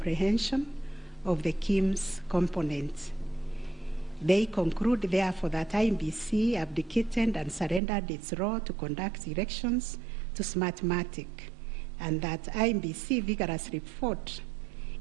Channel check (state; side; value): drops out; left; at 7.8 s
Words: of the KIMS components. They conclude, therefore, that IEBC abdicated and surrendered its role to conduct elections to Smartmatic, and that IEBC vigorously fought